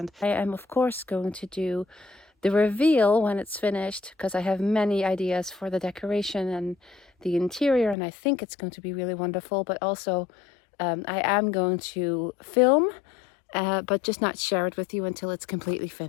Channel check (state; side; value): drops out; right; at 8.0 s